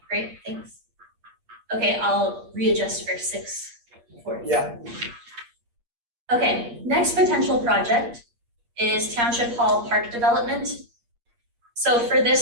great, thanks. Okay, I'll readjust for 6:40. Yeah. Okay, next potential project is Township Hall Park Development. So for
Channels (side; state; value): left; late; 8.5 ms